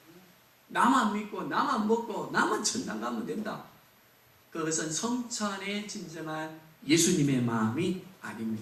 나만 믿고 나만 먹고 나만 천당 가면 된다. 그것은 성찬의 진정한 예수님의 마음이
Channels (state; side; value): identical; both; correlation 1.00